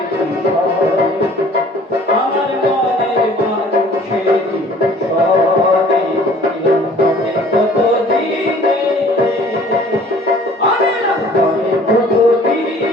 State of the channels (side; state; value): both; normal; correlation 0.52